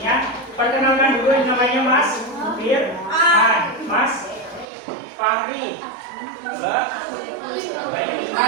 Perkenalkan dulu, yang namanya Mas Firman, Mas Fahri, Mbak Bayu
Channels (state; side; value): drops out; left; at 4.7 s